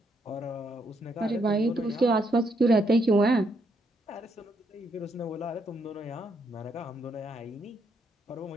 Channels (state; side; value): normal; both; correlation 0.76